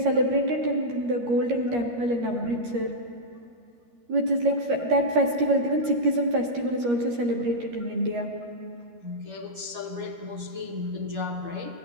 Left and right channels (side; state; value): left; late; 13 ms